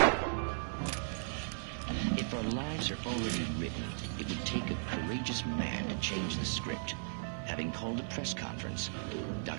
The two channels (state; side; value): silent; left; 54 dB below the other